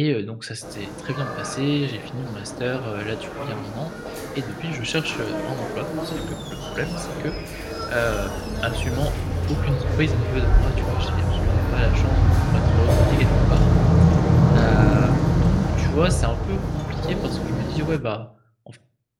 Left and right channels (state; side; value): identical; both; correlation 1.00